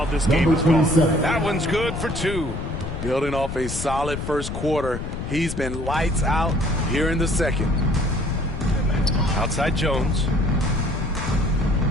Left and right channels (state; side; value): noise; left; rumble, 6 dB below the sound